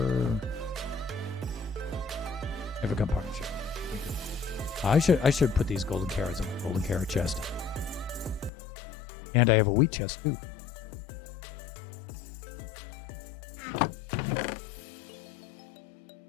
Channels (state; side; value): drops out; right; at 8.5 s